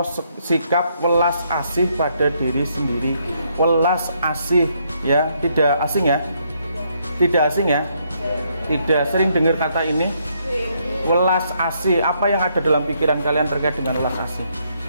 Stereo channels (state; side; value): inverted; both; correlation -0.73